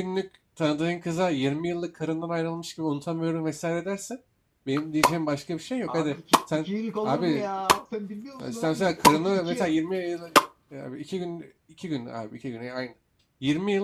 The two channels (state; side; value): identical; both; correlation 1.00